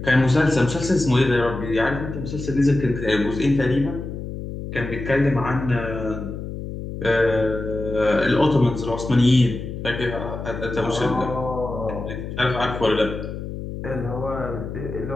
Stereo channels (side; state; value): left; noise; hum, 8 dB below the sound